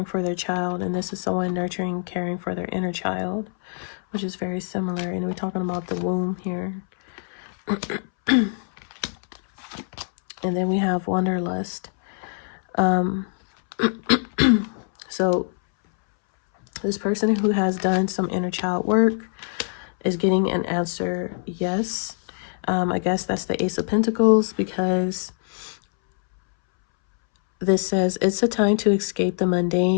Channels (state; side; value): silent; right; 63 dB below the other